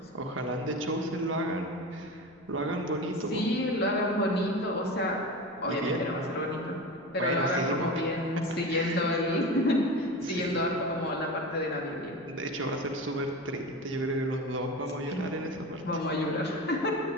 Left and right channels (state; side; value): noise; left; rumble, 30 dB below the sound